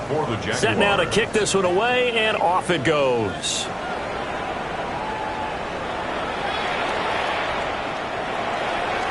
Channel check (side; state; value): both; identical; correlation 1.00